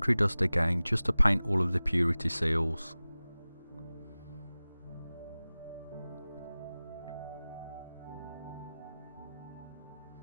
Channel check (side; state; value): both; inverted; correlation -0.97